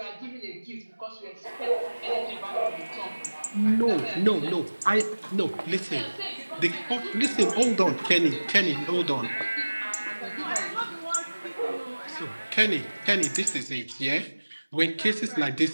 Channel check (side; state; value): both; inverted; correlation -1.00